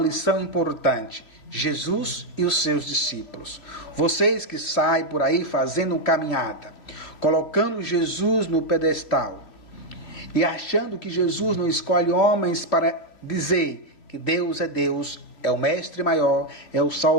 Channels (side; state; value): right; late; 2.8 ms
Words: importante. Jesus e os seus discípulos. Vocês que saem por aí fazendo caminhada, colocando Jesus no pedestal e achando que Jesus não escolhe homens para dizer que Deus, é o mestre maior, é o